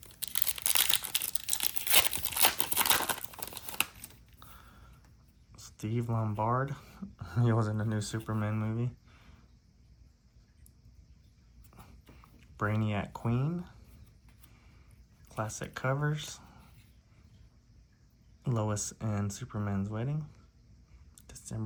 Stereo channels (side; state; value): both; identical; correlation 1.00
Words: Steve Lombard. He was in the new Superman movie. Brainiac Queen. Classic covers. Lois and Superman's Wedding.